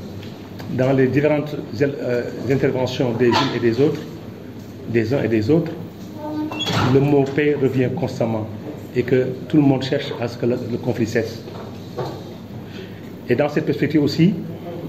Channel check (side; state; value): both; identical; correlation 1.00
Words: Dans les différentes interventions des unes et des autres, des uns et des autres, le mot paix revient constamment et que tout le monde cherche à ce que le conflit cesse. Et dans cette perspective aussi,